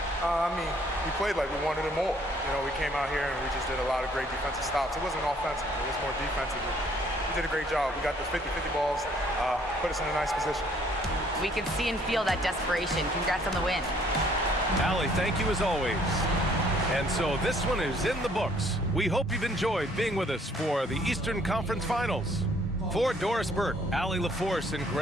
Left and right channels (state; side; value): normal; both; correlation 0.62